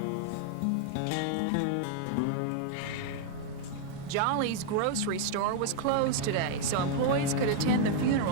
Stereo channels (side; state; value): both; different; correlation 0.00